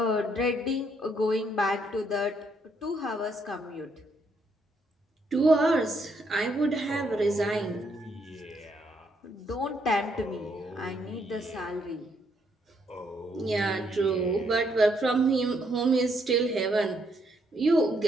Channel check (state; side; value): normal; both; correlation 0.73